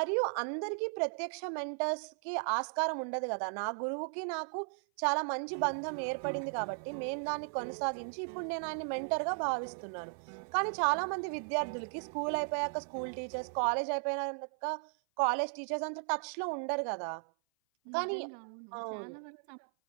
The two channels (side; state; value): left; silent; 54 dB below the other